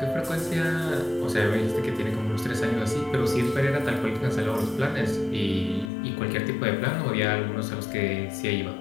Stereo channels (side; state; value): right; drops out; at 5.9 s